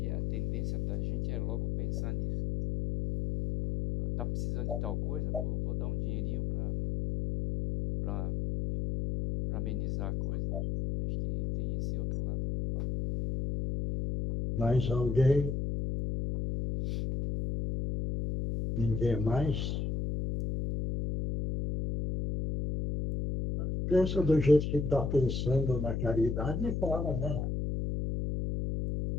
a tendência da gente é logo pensar nisso. Tá precisando de tal coisa? Vou dar um dinheirinho para amenizar a coisa. Eu acho que tem esse outro lado, né? Mais alguém? Ninguém mais? Pensa do jeito que está pensando na caridade e fala, né?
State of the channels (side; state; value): left; noise; hum, 1 dB below the sound